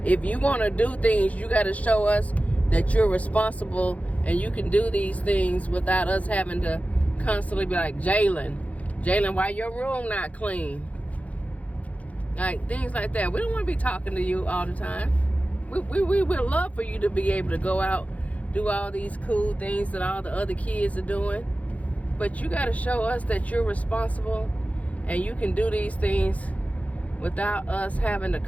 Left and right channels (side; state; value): right; late; 0.068 ms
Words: if you want to do things, you got to show us that you're responsible and you can do these things without us having to constantly be like, Jalen, why your room not clean? Like, things like that. We don't want to be talking to you all the time. We would love for you to be able to go out, do all these cool things that all the other kids are doing. But you got to show us that you're responsible and you can do these things without us having to